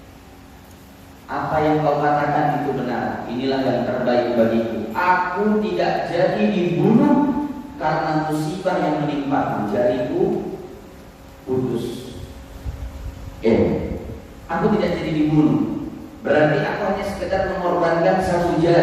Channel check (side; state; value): both; identical; correlation 1.00